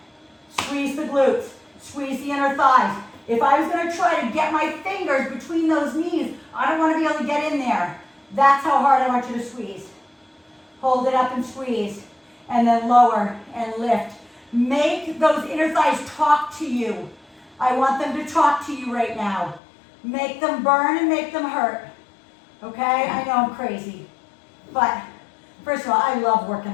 squeeze the glutes, squeeze the inner thighs. If I was going to try to get my fingers between those knees, I don't want to be able to get in there. That's how hard I want you to squeeze. Hold it up and squeeze, and then lower and lift. Make those inner thighs talk to you. I want them to talk to you right now. Make them burn and make them hurt. Okay? I know I'm crazy. But first of all, I love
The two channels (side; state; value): right; drops out; at 19.6 s